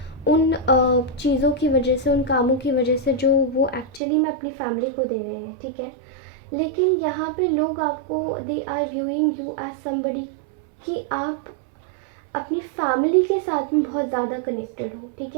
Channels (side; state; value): left; drops out; at 4.0 s